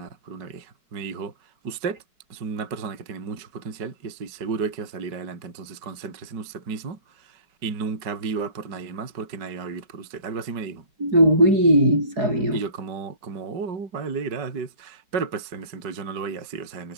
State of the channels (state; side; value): late; left; 4.7 ms